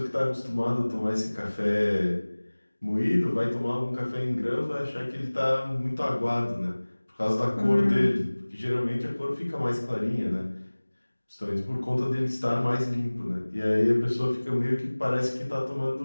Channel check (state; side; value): inverted; both; correlation -1.00